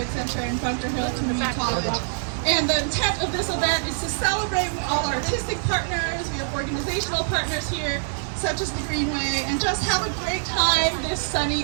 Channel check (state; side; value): silent; left; digital silence